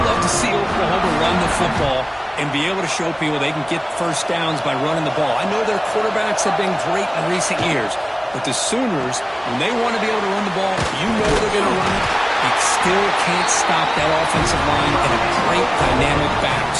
to see Oklahoma run the football and be able to show people they can get 1st downs by running the ball. I know their quarterbacks have been great in recent years, but the Sooners, when they want to be able to run the ball, you know they're going to run it. You still can't stop that offensive line and a great dynamic back.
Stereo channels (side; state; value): both; identical; correlation 1.00